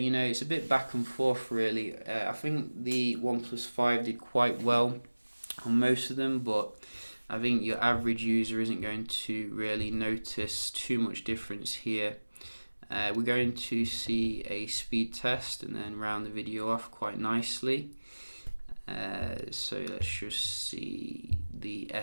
a bit back and forth really. I think the OnePlus 5 did quite well on most of them, but I think your average user isn't going to really notice too much difference here. We're going to see a speed test and then round the video off quite nicely. So let's just see the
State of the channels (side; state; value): both; inverted; correlation -1.00